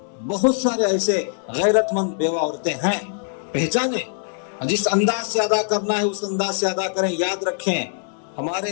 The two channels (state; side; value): silent; right; 64 dB below the other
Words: بہت سارے ایسے غیرت مند بیوہ عورتیں ہیں، پہچانیں۔ جس انداز سے ادا کرنا ہے اس انداز سے ادا کریں۔ یاد رکھیں،